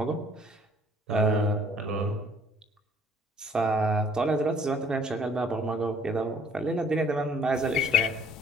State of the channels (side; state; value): both; normal; correlation 0.58